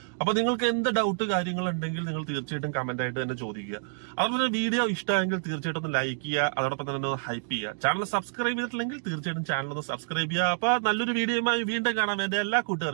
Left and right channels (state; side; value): silent; left; digital silence